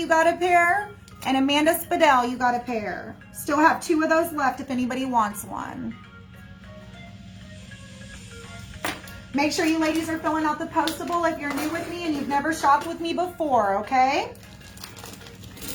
got a pair. And Amanda Spadell, you got a pair. Still have 2 of those left if anybody wants one. Make sure you ladies are filling out the postable if you're new with me and you've never shopped with me before, okay?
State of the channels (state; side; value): identical; both; correlation 1.00